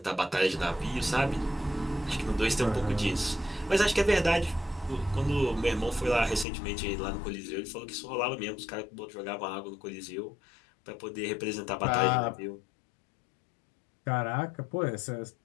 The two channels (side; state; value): right; drops out; at 6.5 s